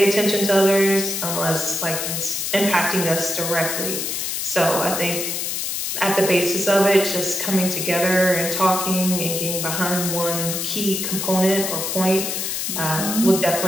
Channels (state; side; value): noise; left; hiss, 2 dB below the sound